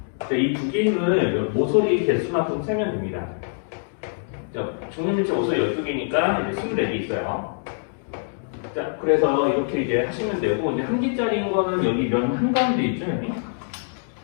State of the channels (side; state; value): right; silent; digital silence